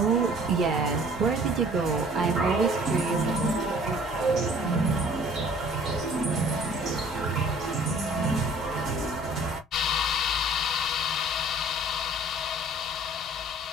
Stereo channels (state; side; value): normal; both; correlation 0.52